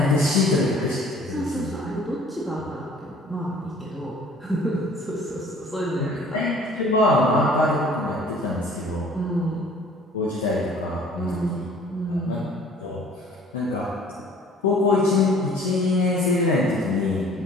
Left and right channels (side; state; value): both; normal; correlation 0.52